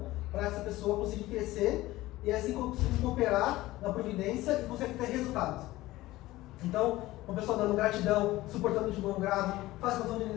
para essa pessoa conseguir crescer e assim conseguir cooperar na providência e conseguir ter resultados. Então, uma pessoa dando gratidão, suportando de bom grado, faz condição de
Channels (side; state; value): right; quieter; 17.5 dB